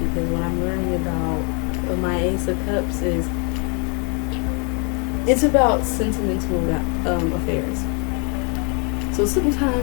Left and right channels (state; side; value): quieter; right; 36.0 dB